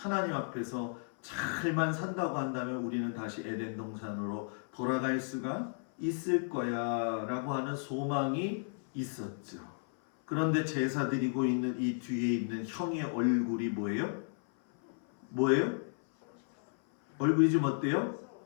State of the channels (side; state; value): right; silent; 55 dB below the other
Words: 앞에서 잘만 산다고 한다면 우리는 다시 에덴 동산으로 돌아갈 수가 있을 거야 라고 하는 소망이 있었죠. 그런데 제사 드리고 있는 이 뒤에 있는 형의 얼굴이 뭐예요? 얼굴이 좀 어때요?